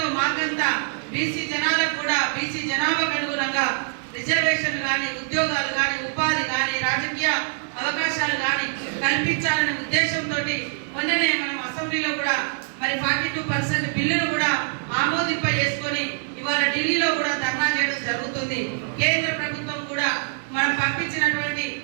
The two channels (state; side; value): silent; left; digital silence